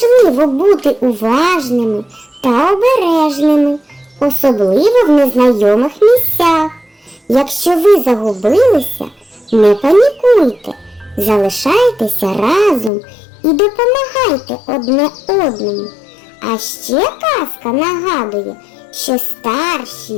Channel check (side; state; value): right; drops out; at 12.9 s